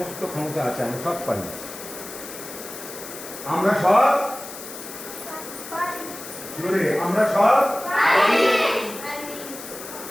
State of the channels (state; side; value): noise; left; hiss, 12 dB below the sound